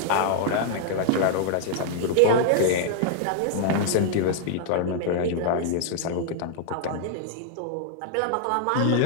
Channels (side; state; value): both; different; correlation -0.01